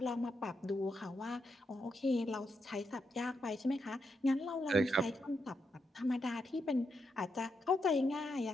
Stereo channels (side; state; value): both; normal; correlation 0.82